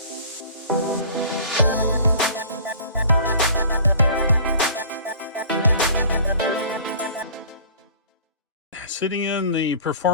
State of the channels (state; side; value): inverted; both; correlation -0.46